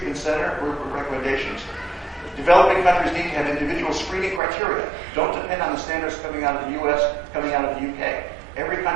center recommendations. Developing countries need to have individual screening criteria. Don't depend on the standards coming out of the US, coming out of the UK. Every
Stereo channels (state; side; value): drops out; left; at 4.4 s